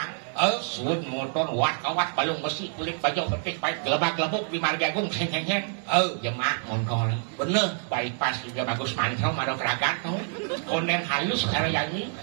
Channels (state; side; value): silent; left; 60 dB below the other